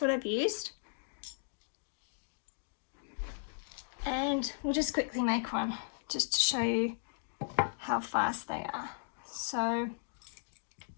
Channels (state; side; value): silent; right; digital silence